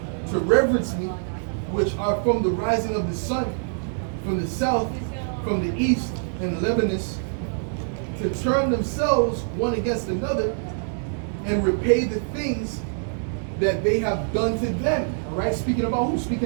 to reverence me, which are from the rising of the sun, from the south, from the east, and Lebanus, to turn themselves one against another and repay the things that they have done to them. All right? Speaking about who?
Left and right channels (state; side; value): silent; left; digital silence